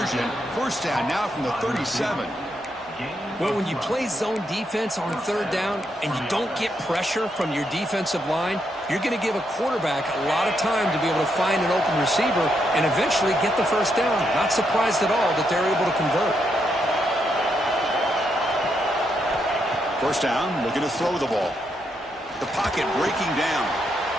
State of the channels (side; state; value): both; normal; correlation 0.79